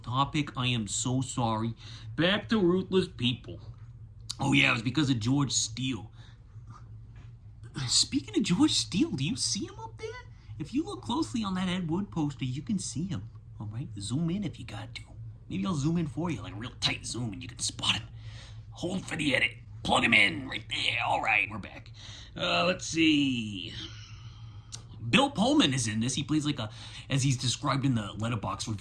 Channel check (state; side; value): identical; both; correlation 1.00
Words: topic. I am so sorry. Back to Ruthless People. Oh, yeah, it was because of George Steele. Speaking of George Steele, do you see him up there? If you look closely on that Ed Wood poster, you can see him. All right? Zoom in if you got to. Maybe I'll zoom in for you, like a real tight zoom, and you can spot him. Hold for the edit. Plug him in right there. All right, we're back. Let's see. Bill Pullman is in this. He plays like as he's described in the Letterboxd